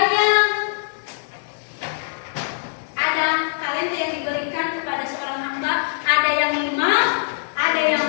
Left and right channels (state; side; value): silent; right; digital silence